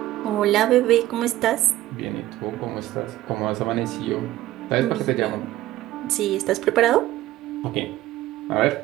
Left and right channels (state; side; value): quieter; left; 15.2 dB